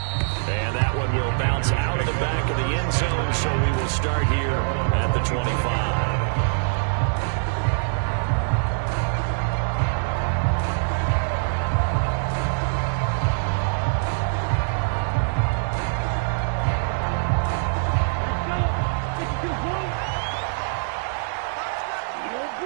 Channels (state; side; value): silent; left; 63 dB below the other